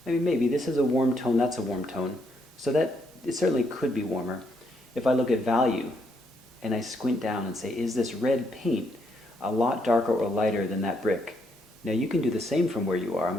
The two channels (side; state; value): both; normal; correlation 0.75